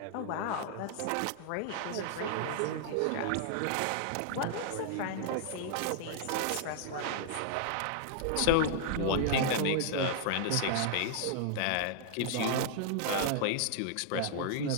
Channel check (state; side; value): different; both; correlation -0.01